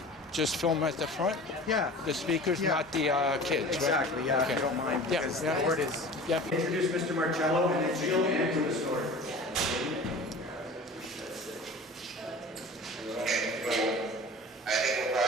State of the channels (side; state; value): both; normal; correlation 0.39